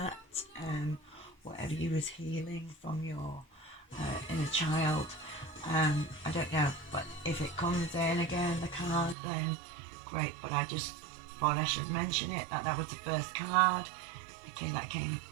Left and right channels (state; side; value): drops out; left; at 9.2 s